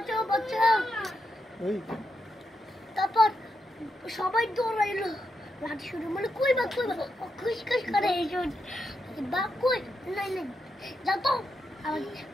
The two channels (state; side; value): normal; both; correlation 0.84